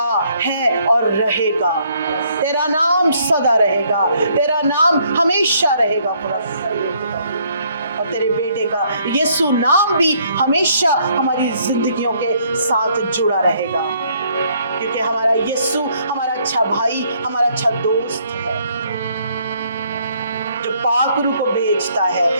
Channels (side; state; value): both; inverted; correlation -0.66